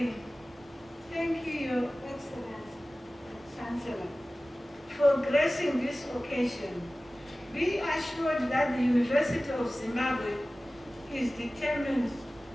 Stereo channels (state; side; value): normal; both; correlation 0.97